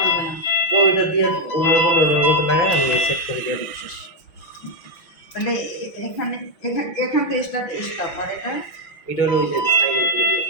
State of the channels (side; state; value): right; late; 5.9 ms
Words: না তো এটা দিয়ে ওনার বলে ওনার মতো লাগাই আমি সেট করে দিয়ে দিই শেষ তাহলে এখানে এখান থেকে স্টপ আর এটা হলো ওই যে সাইলেন্ট করে দিয়ে